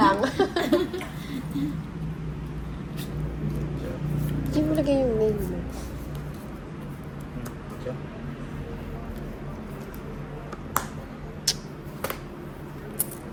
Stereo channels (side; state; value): both; identical; correlation 1.00